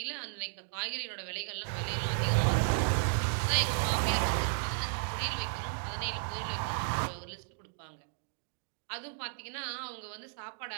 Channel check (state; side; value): silent; left; digital silence